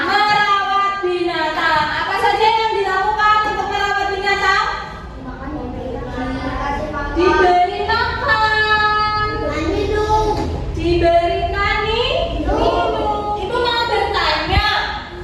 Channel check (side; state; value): both; identical; correlation 1.00